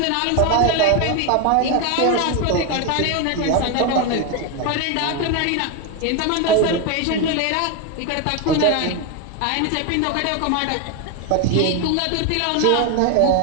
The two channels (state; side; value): different; both; correlation 0.02